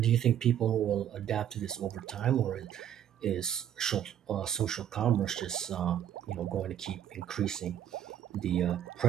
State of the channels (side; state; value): left; quieter; 10.3 dB